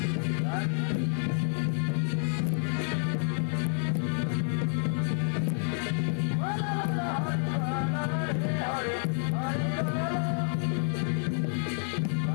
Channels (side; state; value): right; silent; 58 dB below the other